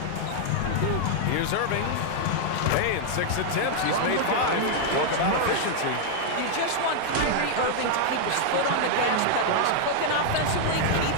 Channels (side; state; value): both; different; correlation 0.00